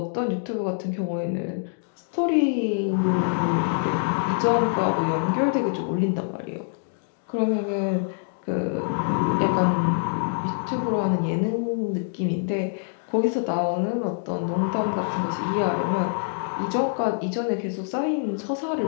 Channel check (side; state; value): right; silent; digital silence